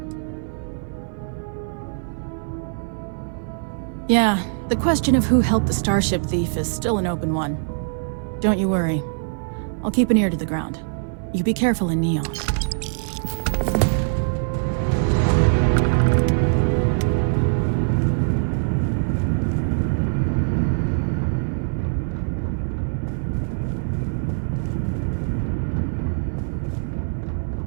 Yeah, the question of who helped the Starship thief is still an open one. Don't you worry. I'll keep an ear to the ground. You be careful in Neon.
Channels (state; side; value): silent; left; 57 dB below the other